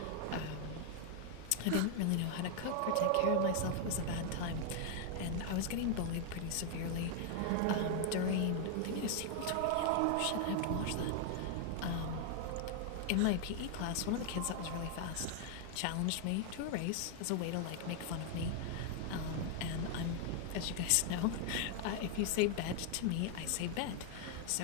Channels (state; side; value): different; both; correlation 0.00